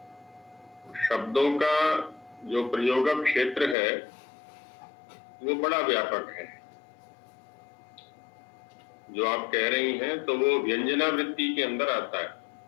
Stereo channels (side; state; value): right; drops out; at 3.8 s